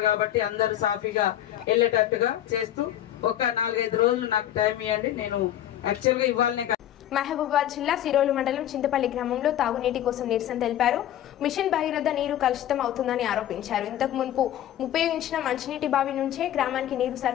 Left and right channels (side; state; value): right; quieter; 11.9 dB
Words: కాబట్టి అందరూ సాఫీగా వెళ్ళేటట్టుగా చేస్తూ ఒక 4-5 రోజులు నాకు టైం ఇవ్వండి. నేను యాక్చువల్గా ఇవ్వాలనే. మహబూబాబాద్ జిల్లా సిరోలు మండలం చింతపల్లి గ్రామంలో తాగునీటి కోసం నిరసన తెలిపారు. మిషన్ భగీరథ నీరు కలుషితం అవుతుందని ఆరోపించారు. ఇంతకు మున్పు ఉపయోగించిన మంచినీటి బావి నుంచే గ్రామానికి నీరు